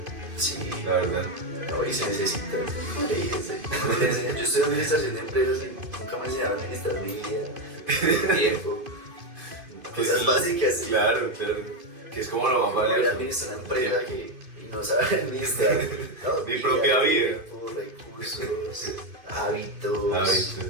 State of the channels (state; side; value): late; left; 2.5 ms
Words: Sí, la verdad. No, y se necesita. Yo estoy en administración de empresas y nunca me enseñaron a administrar mi vida, mi tiempo. Cosas básicas. Claro. Que es como lo más valioso. Voy a administrar una empresa que no sabe administrar. Mi propia vida. Tiempo, recursos, hábitos.